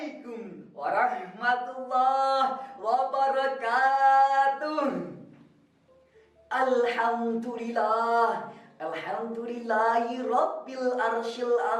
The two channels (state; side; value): identical; both; correlation 1.00